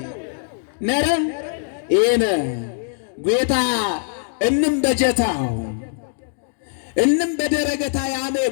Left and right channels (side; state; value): right; silent; digital silence